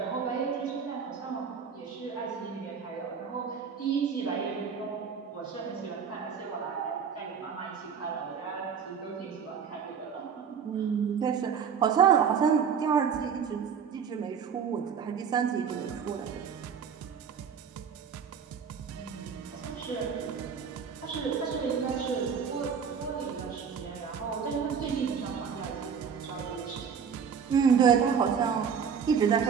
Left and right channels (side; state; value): left; quieter; 6.9 dB